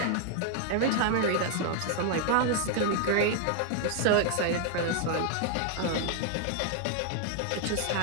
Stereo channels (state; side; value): different; both; correlation 0.00